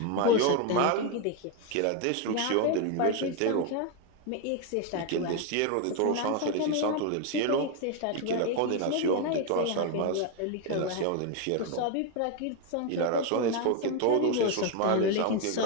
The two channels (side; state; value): both; different; correlation 0.02